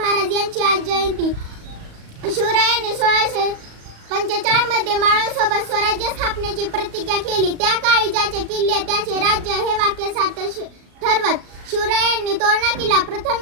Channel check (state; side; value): late; left; 37 ms